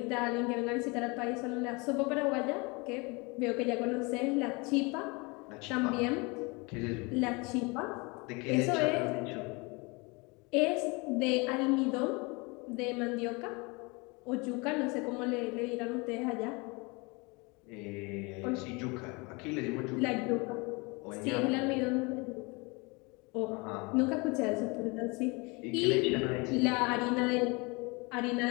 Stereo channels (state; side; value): quieter; right; 27.8 dB